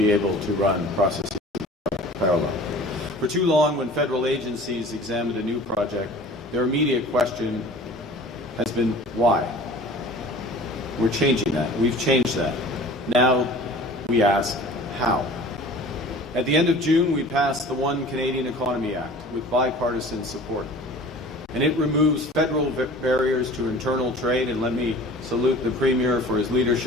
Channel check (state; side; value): normal; both; correlation 0.44